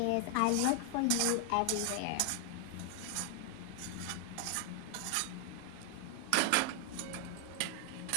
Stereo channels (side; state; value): both; different; correlation 0.00